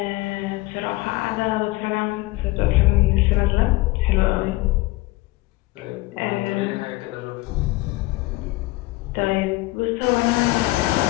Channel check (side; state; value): right; quieter; 20.1 dB